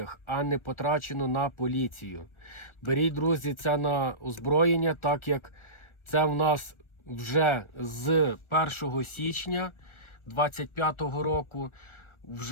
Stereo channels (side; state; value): right; late; 1.3 ms